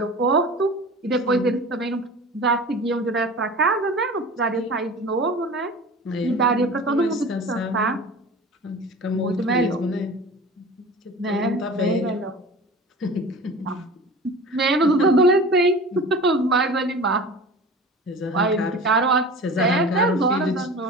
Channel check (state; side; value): normal; both; correlation 0.37